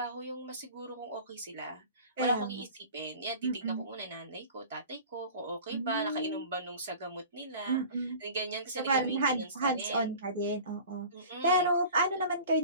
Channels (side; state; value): both; inverted; correlation -0.40